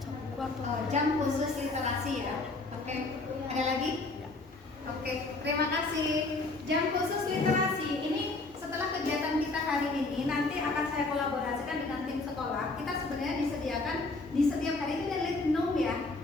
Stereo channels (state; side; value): quieter; right; 3.3 dB